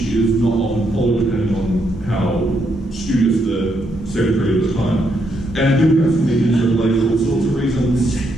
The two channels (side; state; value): both; normal; correlation 0.77